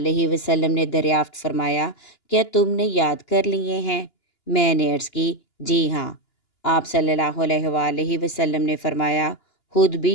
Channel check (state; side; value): late; right; 2.9 ms